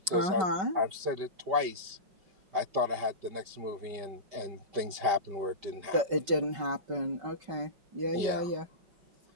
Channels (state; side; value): late; left; 5.1 ms